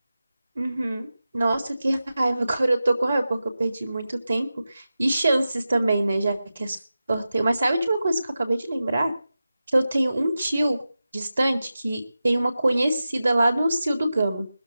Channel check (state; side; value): inverted; both; correlation -0.93